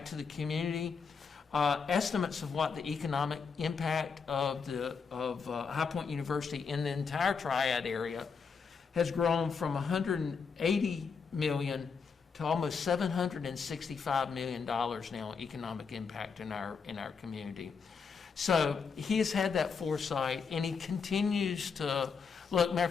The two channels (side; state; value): right; quieter; 5.6 dB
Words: to the community, estimates of what the economic impact of High Point University in the entire Triad area has grown from $180 million to almost $765 million now economic impact in our community. So he has had that foresight, and he continues to look. Matter of